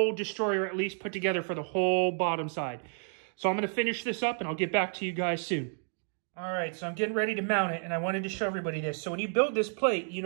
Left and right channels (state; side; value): silent; left; 57 dB below the other